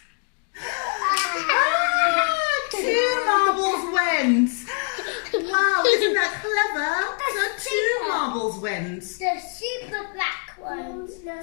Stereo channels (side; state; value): right; quieter; 39.0 dB